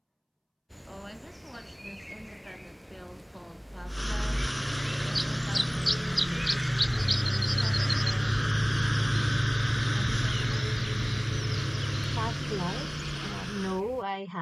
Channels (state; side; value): identical; both; correlation 1.00